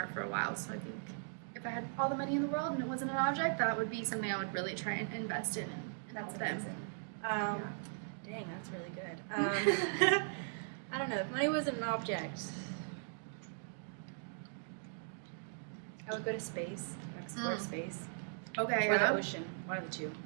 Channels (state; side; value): silent; left; digital silence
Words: for a while. So I think if I had all the money in the world and it wasn't an object, that would be something I would really try and invest in and help them. Amazing. Dang, that's really good. I don't know. If money wasn't an object, I would go to space, explore space, Okay, or yeah, the ocean, one of the two.